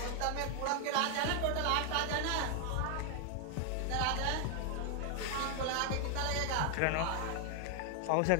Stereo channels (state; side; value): different; both; correlation 0.00